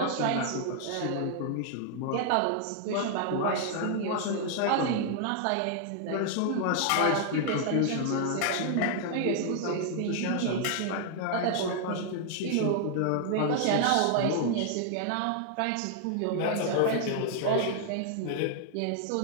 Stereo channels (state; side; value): different; both; correlation 0.00